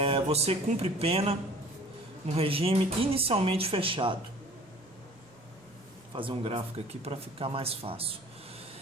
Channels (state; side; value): normal; both; correlation 0.48